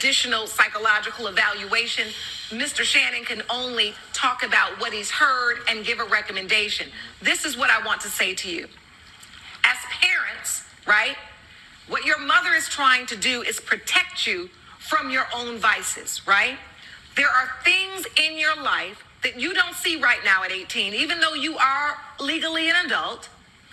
psychological evaluation. Mr. Shannon can only talk about what he's heard and give a recommendation. This is what I want to say to you. As parents, right, what your mother is trying to do is protect you from your own vices, right? There are things in your life that you don't see right now at 18, even though you are legally an adult.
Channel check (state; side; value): identical; both; correlation 1.00